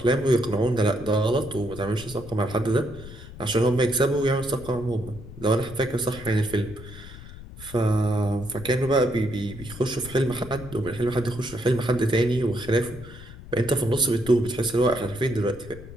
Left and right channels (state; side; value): noise; left; rumble, 15 dB below the sound